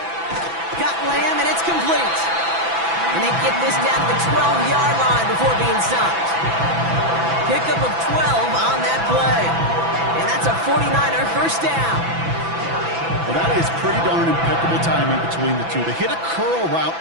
Got Lamb, and it's complete. And they get this down to the 12-yard line before being stopped. Pickup of 12 on that play. And that's a 49er first down. Well, that is pretty darn impeccable timing between the two. To hit a curl route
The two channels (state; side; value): late; left; 6.0 ms